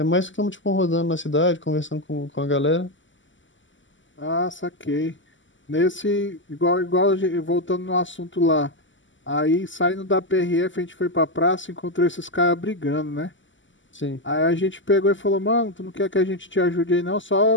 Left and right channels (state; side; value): late; right; 0.55 ms